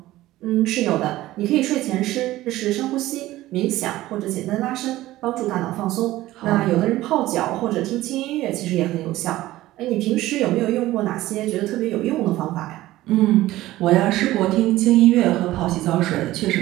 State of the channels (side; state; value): left; quieter; 16.2 dB